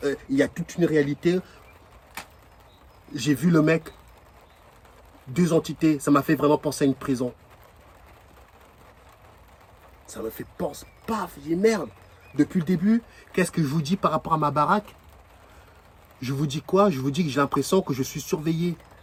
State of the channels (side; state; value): both; identical; correlation 1.00